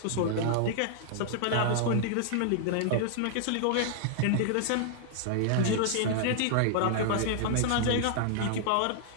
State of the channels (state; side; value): different; both; correlation 0.00